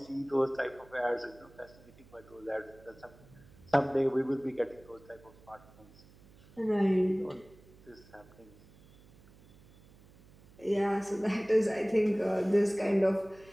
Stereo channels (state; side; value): noise; right; hum, 24 dB below the sound